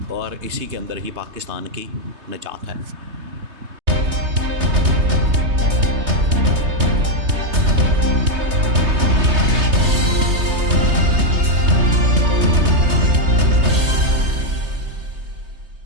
और इसी के अंदर ही पाकिस्तान की निजात है।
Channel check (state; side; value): late; left; 3.2 ms